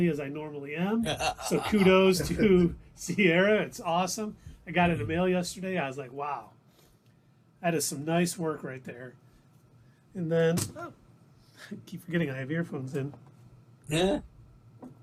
as I normally am. So kudos to Sierra. It's awesome. I got it in the mail yesterday. I was like, wow. That is some nice work right there. And then, I keep forgetting I have earphones in. Yeah. And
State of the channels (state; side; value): identical; both; correlation 1.00